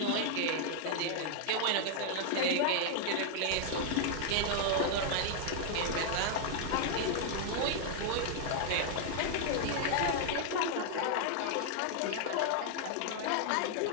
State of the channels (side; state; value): both; different; correlation 0.00